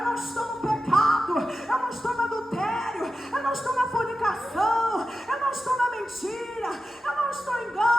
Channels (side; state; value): both; normal; correlation 0.92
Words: não estou no pecado, eu não estou no adultério, eu não estou na fornicação, eu não estou na mentira, eu não estou em